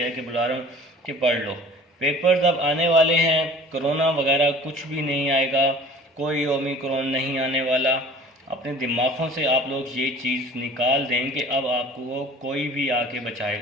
के बुला रहा हूँ कि पढ़ लो। पेपर्स अब आने वाले हैं, कोरोना वगैरह कुछ भी नहीं आएगा, कोई ओमिक्रॉन नहीं आने वाला। अपने दिमागों से आप लोग ये चीज़ निकाल दें कि अब आपको कोई भी आके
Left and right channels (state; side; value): normal; both; correlation 0.46